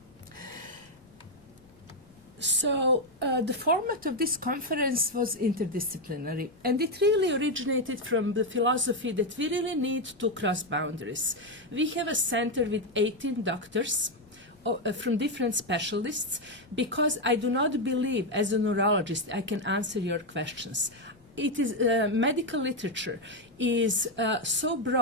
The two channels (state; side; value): noise; left; rumble, 30 dB below the sound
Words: So the format of this conference was interdisciplinary, and it really originated from the philosophy that we really need to cross boundaries. We have a center with 18 doctors from different specialists because I do not believe as a neurologist I can answer your questions. It is medical literature is so